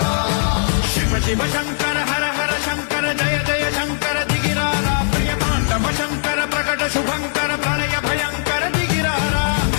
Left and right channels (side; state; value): right; silent; digital silence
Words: शिव शंकर हर हर शंकर जय जय शंकर दिगिरारा प्रिय तांडव शंकर प्रकट शुभंकर प्रणय भयंकर दिगिरारा